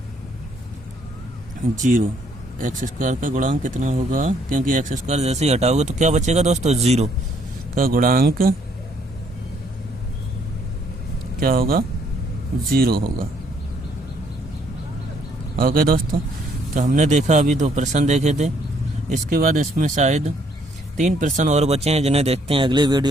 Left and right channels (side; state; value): both; normal; correlation 0.67